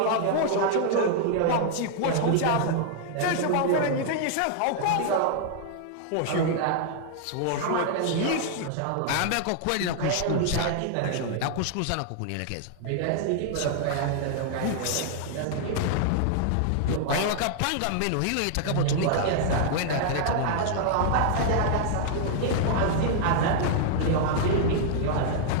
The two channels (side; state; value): both; different; correlation -0.01